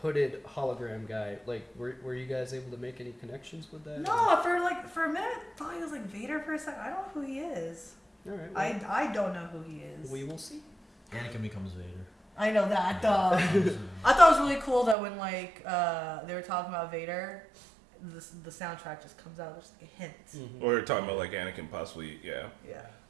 hooded hologram guy. Like, were you guys able to make any connections with that? No, for a minute I thought he was like Vader for a second. I don't know who he is. All right. Well, I don't know who he is. We will see. Anakin becomes Vader. I know that. I thought it was really cool that when like they were talking about Vader, the soundtrack just comes out just like a hint. Or you're talking about like Anakin possibly, Yeah.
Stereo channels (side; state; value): left; drops out; at 15.0 s